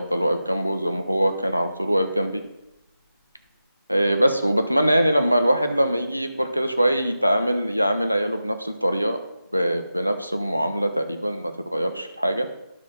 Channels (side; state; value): both; inverted; correlation -0.91